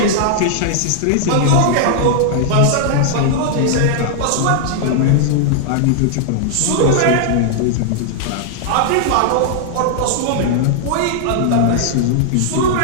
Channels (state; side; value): different; both; correlation -0.01